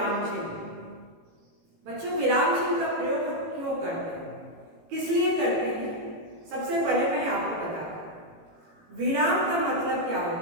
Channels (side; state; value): left; late; 18 ms